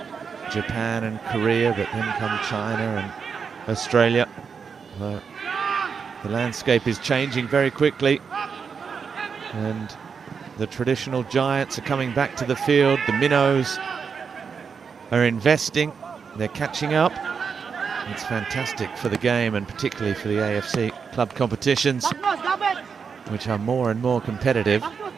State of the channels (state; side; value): quieter; left; 6.1 dB